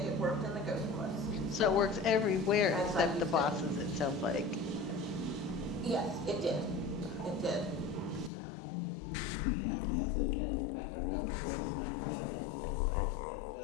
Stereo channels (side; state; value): right; drops out; at 8.3 s